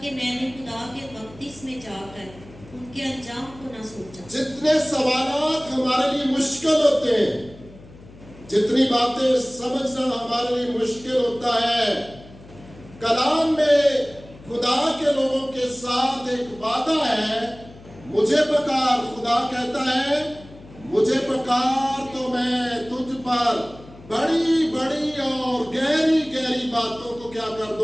कि मैंने खुदा के बख्तिस में जाकर उनके अंजाम को न सोचा। जितने सवालात हमारे लिए मुश्किल होते हैं, जितनी बातें समझना हमारे लिए मुश्किल होता है, कलाम में खुदा के लोगों के साथ एक वादा है, मुझे पुकार, खुदा कहता है मुझे पुकार तो मैं तुझ पर बड़ी बड़ी और गहरी गहरी बातों को क्या कर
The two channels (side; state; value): left; noise; hum, 20 dB below the sound